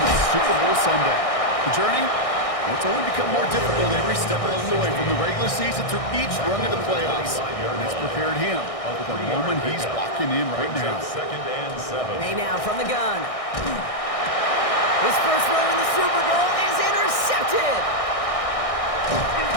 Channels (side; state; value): right; late; 1.6 ms